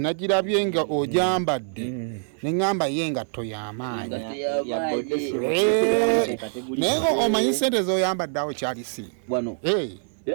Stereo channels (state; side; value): silent; left; 62 dB below the other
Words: nga ogyambadde ne ngamba ye engatto y'amaanyi. Naye omanyi ssente z'oyambadde awo kyali si. Wano.